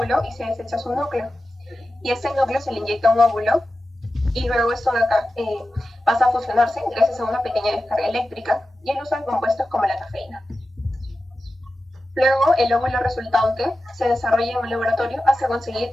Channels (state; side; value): normal; both; correlation 0.93